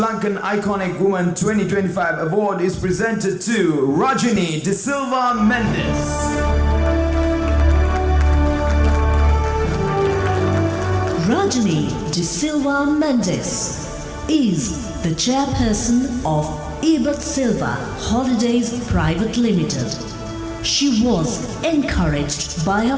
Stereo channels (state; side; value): identical; both; correlation 1.00